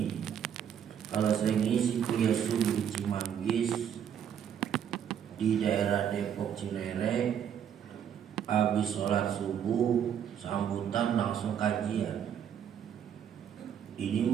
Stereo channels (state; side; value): quieter; left; 8.8 dB